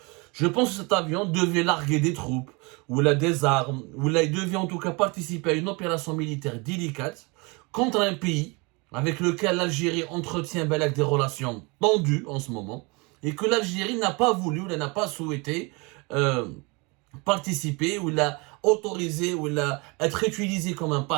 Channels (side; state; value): left; quieter; 28.3 dB